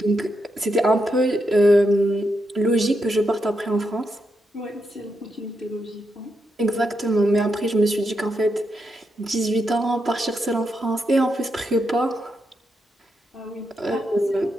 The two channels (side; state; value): both; normal; correlation 0.83